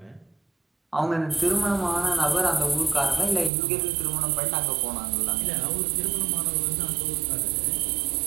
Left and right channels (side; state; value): left; drops out; at 3.5 s